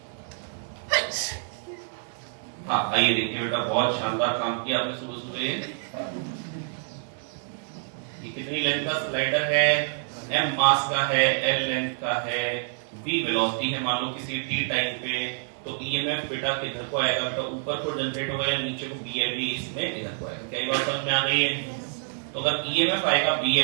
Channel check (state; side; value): silent; left; digital silence